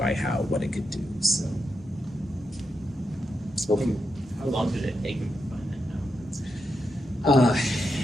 what it could do. So, how long did it take him to find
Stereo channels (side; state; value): both; normal; correlation 0.85